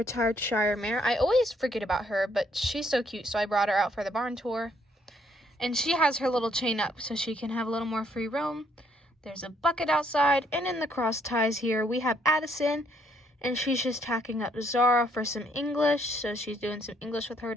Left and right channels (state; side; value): normal; both; correlation 0.69